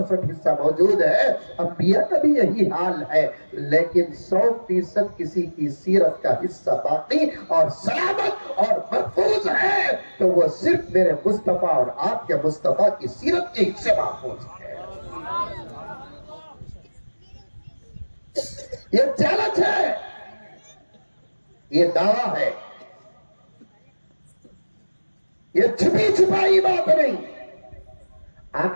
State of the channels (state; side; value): inverted; both; correlation -1.00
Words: حصہ موجود ہے۔ انبیاء کا بھی یہی حال ہے، لیکن 100% کسی کی سیرت کا حصہ باقی اور سلامت اور محفوظ ہے تو وہ صرف میرے مصطفیٰ اور آپ کے مصطفیٰ کی سیرت کے حصے محفوظ ہے۔ یہ چیلنج ہے، یہ دعویٰ ہے، یہ چھپی چھپائی بات نہیں۔